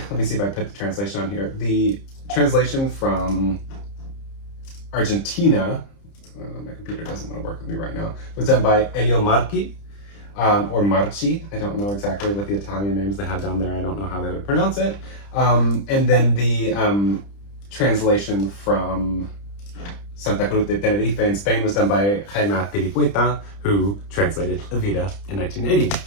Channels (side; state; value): right; late; 30 ms